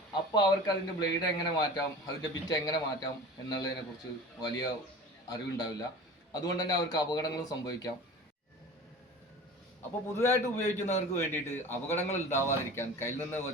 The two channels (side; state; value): both; normal; correlation 0.38